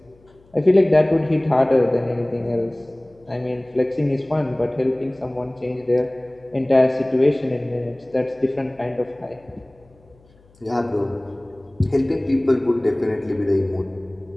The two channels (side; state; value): left; noise; hum, 30 dB below the sound